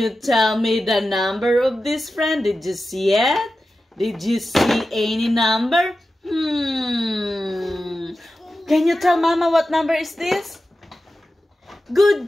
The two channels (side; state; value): both; normal; correlation 0.93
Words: tell me the number of this friend? Did you see it? Did you see any number? Can you tell Mama what number is this? Good